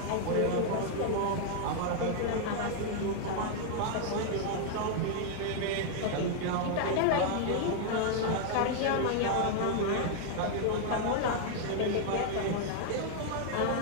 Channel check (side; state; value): both; different; correlation 0.00